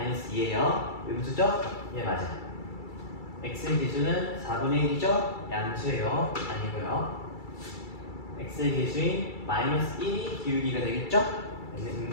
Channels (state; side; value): late; right; 2.3 ms